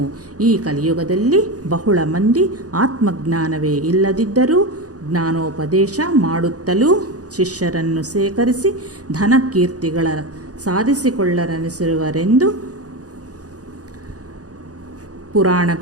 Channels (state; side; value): late; left; 0.67 ms